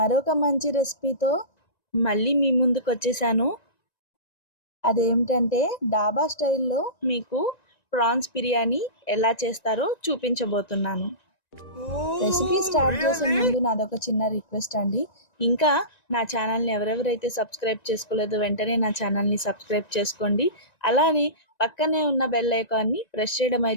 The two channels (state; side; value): late; right; 1.9 ms